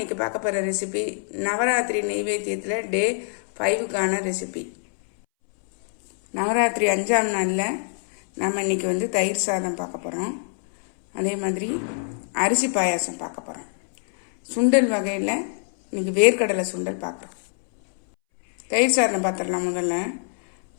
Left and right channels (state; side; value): silent; right; 63 dB below the other